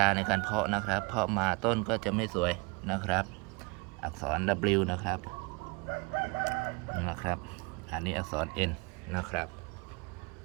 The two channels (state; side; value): quieter; left; 28.3 dB